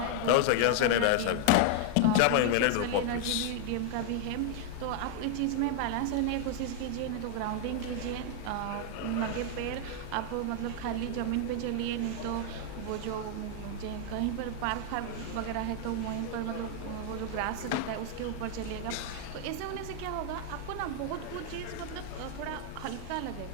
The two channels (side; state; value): both; different; correlation 0.00